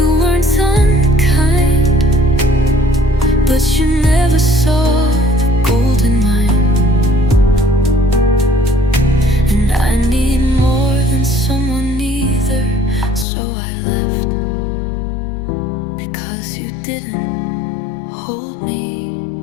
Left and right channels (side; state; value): right; drops out; at 13.2 s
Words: weren't unkind, but you never saw the gold in mine. And I need more than someone either, so I left, because you didn't hold me